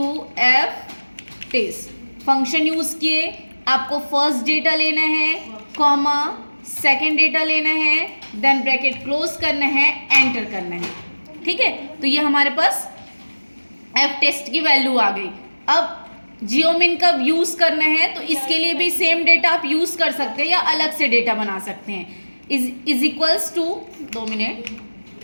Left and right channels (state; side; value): inverted; both; correlation -1.00